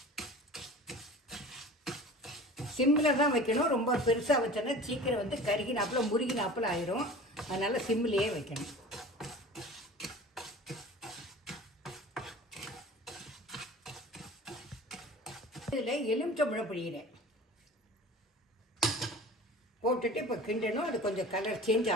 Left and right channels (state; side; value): normal; both; correlation 0.39